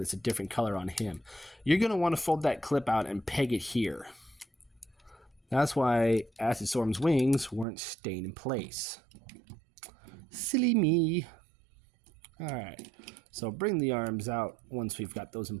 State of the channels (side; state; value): left; drops out; at 7.7 s